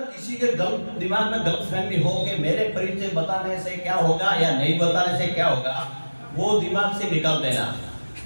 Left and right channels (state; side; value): inverted; both; correlation -1.00